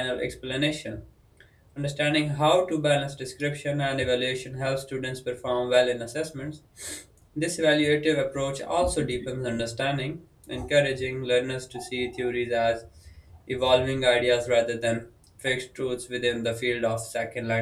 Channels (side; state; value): both; identical; correlation 1.00